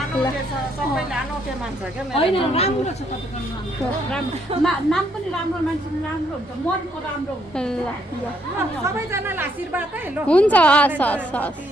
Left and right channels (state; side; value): normal; both; correlation 0.71